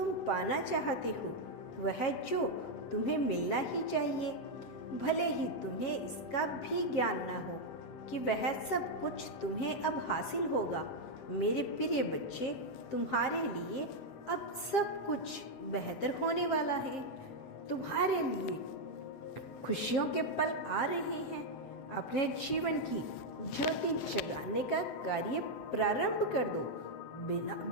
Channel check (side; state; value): right; late; 7.9 ms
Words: पाना चाहते हो, वह जो तुम्हें मिलना ही चाहिए, भले ही तुम्हें इसका भी ज्ञान न हो कि वह सब कुछ तुम्हें अब हासिल होगा। मेरे प्रिय बच्चे, तुम्हारे लिए अब सब कुछ बेहतर होने वाला है। तुम्हारे लिए खुशियों के पल आ रहे हैं। अपने जीवन की ज्योति जगाने का कार्य प्रारंभ कर दो। बिना